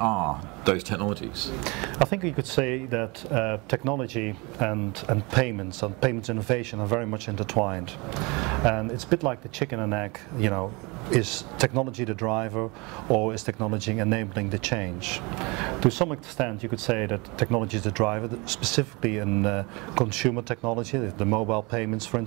those technologies? I think you could say that technology and payments innovation are very much intertwined. And it's a bit like the chicken and egg, you know, is technology the driver or is technology enabling the change? To some extent you could say that technology is the driver, specifically in consumer technology, the mobile payments for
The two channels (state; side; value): quieter; left; 26.9 dB